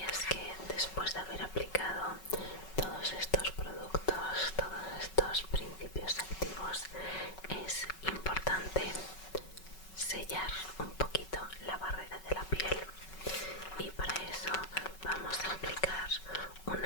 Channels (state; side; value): late; right; 5.3 ms